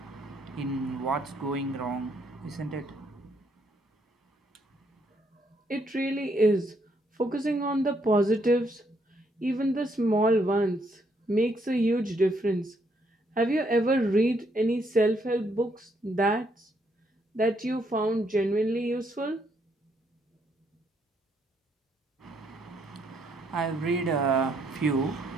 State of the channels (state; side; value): normal; both; correlation 0.73